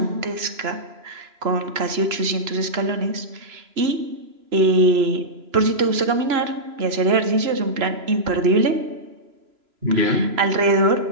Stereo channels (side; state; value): left; late; 3.0 ms